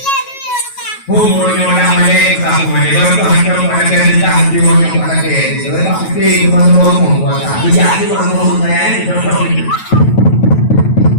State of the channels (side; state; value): right; late; 9.2 ms